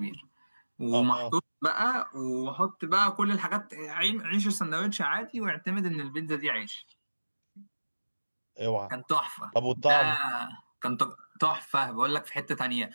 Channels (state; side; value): inverted; both; correlation -1.00